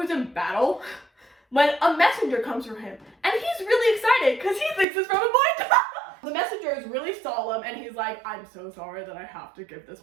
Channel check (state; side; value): drops out; left; at 4.9 s